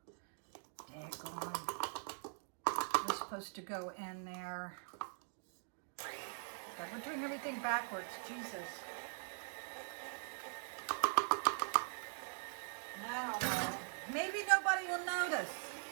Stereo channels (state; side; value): silent; left; digital silence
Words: Daggone. We're supposed to go in there. God, we're doing everything backwards. Jesus. I don't know. Maybe nobody will notice.